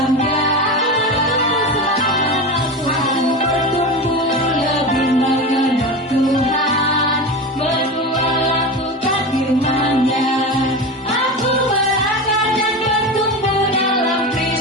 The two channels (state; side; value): normal; both; correlation 0.25